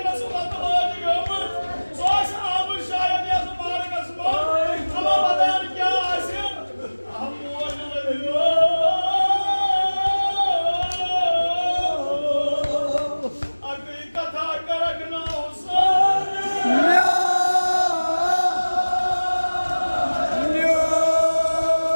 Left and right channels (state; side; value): inverted; both; correlation -1.00